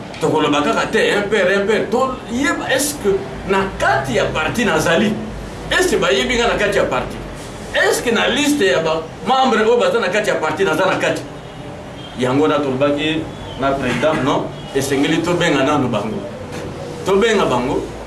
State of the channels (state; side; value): identical; both; correlation 1.00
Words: tokoloba kaka te impere toyeba estce na kati ya parti nazali estce bayebi nga na kati ya parti estce na liste ya bamembre oyo baza na kati ya parti naza na kati yango na tolobaki na président non esengeli tobenga nanu bango tobenga bango